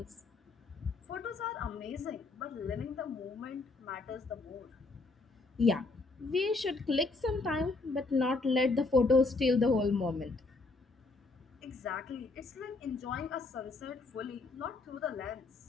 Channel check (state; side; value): quieter; right; 3.6 dB